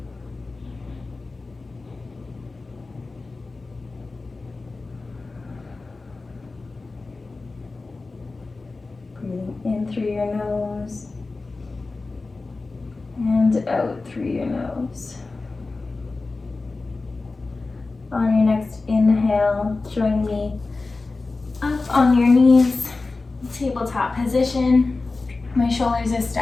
Breathing in through your nose and out through your nose. On your next inhale, join me up on your knees, tabletop position. My shoulders are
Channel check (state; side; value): quieter; right; 3.6 dB